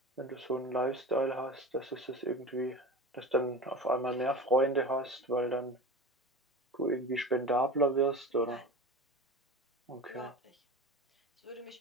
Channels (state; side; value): normal; both; correlation 0.32